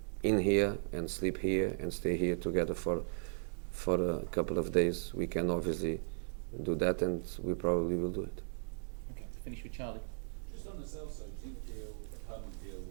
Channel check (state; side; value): silent; left; digital silence